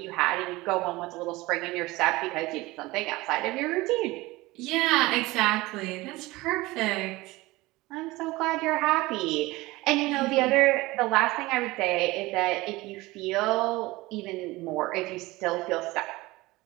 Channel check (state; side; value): quieter; left; 20.5 dB